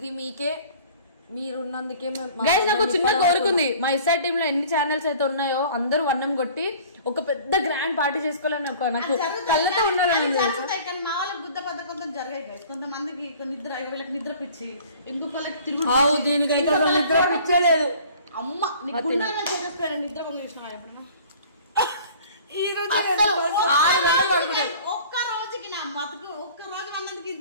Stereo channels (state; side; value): inverted; both; correlation -0.48